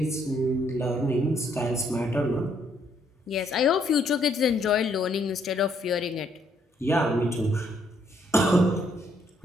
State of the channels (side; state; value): both; normal; correlation 0.70